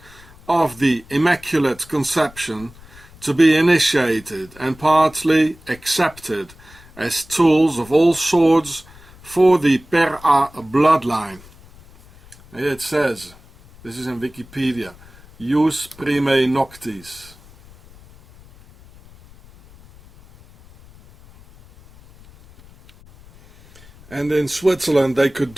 of the Immaculate Conception to be initiated and partly accepted as tools of all sorts for the Per-A bloodline. Here it says, this is in Wikipedia, Jus Primae Noctis. And in Switzerland they could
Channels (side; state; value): left; noise; rumble, 24 dB below the sound